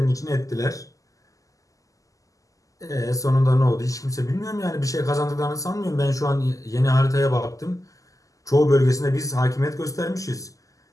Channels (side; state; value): right; late; 0.16 ms